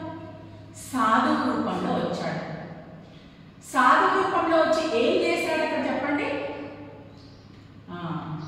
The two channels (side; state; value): both; identical; correlation 1.00